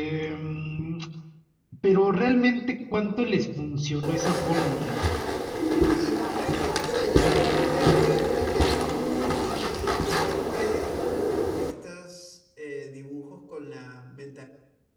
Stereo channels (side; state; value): both; identical; correlation 1.00